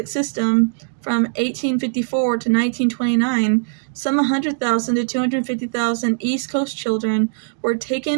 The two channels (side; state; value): left; silent; digital silence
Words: system, from 1854 to 1929, some 100,000 to 250,000 East Coast children were